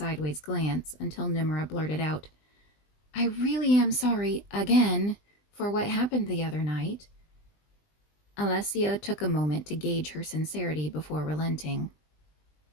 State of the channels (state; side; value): late; right; 20 ms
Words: glance until Nimra blurted out, "I really am sorry, again, for what happened the other night." Alessia took a moment to gauge her sincerity before relenting.